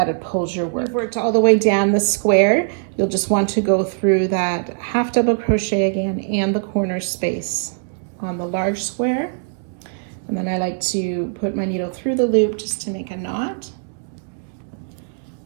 it pulls your work. You've worked all the way down the square. You'll just want to go through that half double crochet again and the corner space on the large square. And then I like to put my needle through the loop just to make a knot.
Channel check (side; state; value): left; silent; digital silence